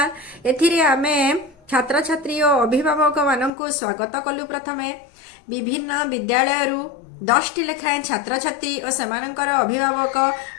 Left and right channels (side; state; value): right; drops out; at 3.5 s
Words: एथिरे आमे छात्र छात्री और अभिभावक मानक स्वागत कलु। प्रथमे विभिन्न विद्यालय 10 टी लेखाएं छात्र छात्री और सेमानंकर अभिभावक